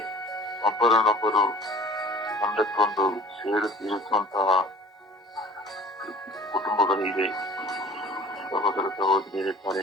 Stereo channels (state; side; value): normal; both; correlation 0.44